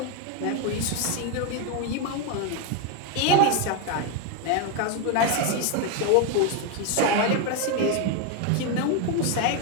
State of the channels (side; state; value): both; different; correlation 0.02